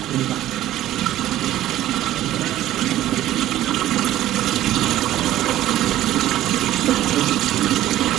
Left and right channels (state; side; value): quieter; left; 13.7 dB